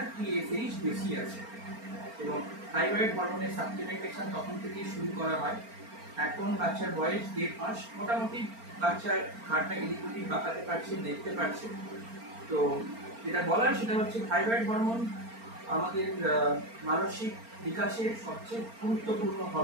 টিএসএইচ বেশি আছে এবং থাইরয়েড হরমোনের সাপ্লিমেন্টেশন তখন থেকেই শুরু করা হয়। এখন বাচ্চার বয়স 1.5 মাস, মোটামুটি বাচ্চার ঘাড়টা এদিক ওদিক বাঁকাতে পারছে, দেখতে পারছে। তো যেটা বলার সেটা হচ্ছে থাইরয়েড হরমোন আমাদের মানসিক বিকাশের সবচেয়ে গুরুত্বপূর্ণ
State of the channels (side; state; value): left; late; 4.4 ms